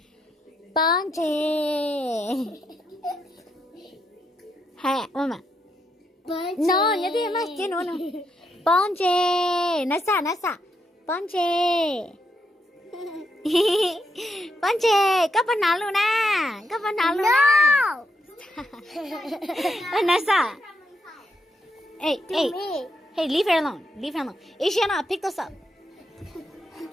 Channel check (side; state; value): both; normal; correlation 0.80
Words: Bonje. Hey, Mama. No, nhớ đi mà, chứ nữa. Bonje. Nasa. Bonje. Bonje, có phần nào luôn à? Có phần nào luôn à? Vanessa. Hey, leave her alone. Ishiana, pick this up.